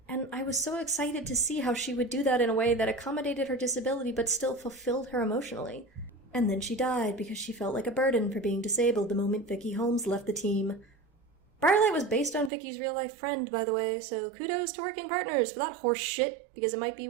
and I was so excited to see how she would do that in a way that accommodated her disability but still fulfilled her emotionally. And then she died because she felt like a burden for being disabled the moment Vicky Holmes left the team. Briarlight was based on Vicky's real-life friend, by the way, so kudos to working partners for that horse shit, because it might be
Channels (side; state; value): left; drops out; at 12.5 s